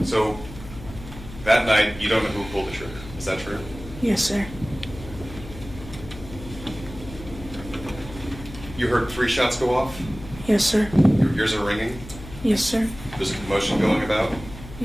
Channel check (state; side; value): noise; left; hum, 14 dB below the sound